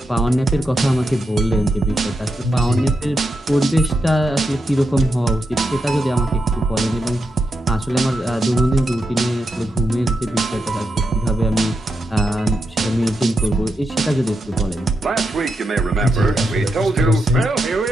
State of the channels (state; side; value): normal; both; correlation 0.85